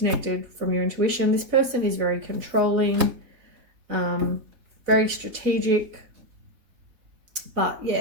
from your intuition. This person is very controlling, very strategic, but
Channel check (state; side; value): late; left; 3.7 ms